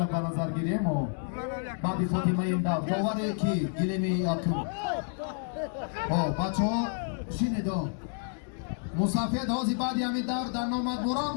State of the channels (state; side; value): silent; right; digital silence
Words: به نظر گیریم و بعد فاطمه این دور باوره که گیریم یکم بچه ها شنیدو مسافر هازی بعدی همین دور در نامد